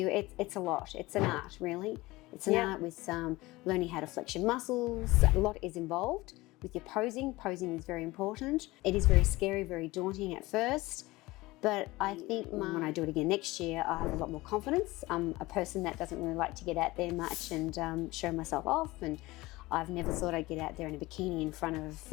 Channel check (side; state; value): right; quieter; 20.2 dB